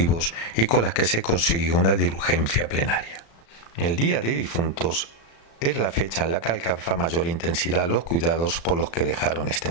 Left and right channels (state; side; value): late; right; 36 ms